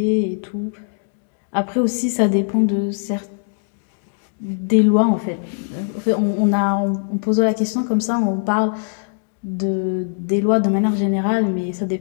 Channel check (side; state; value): right; silent; digital silence